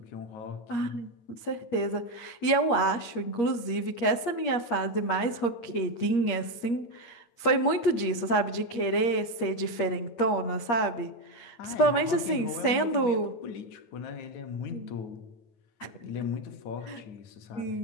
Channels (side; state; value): right; late; 8.5 ms